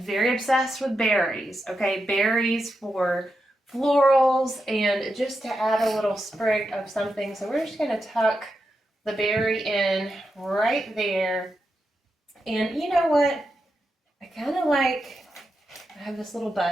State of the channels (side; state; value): both; normal; correlation 0.87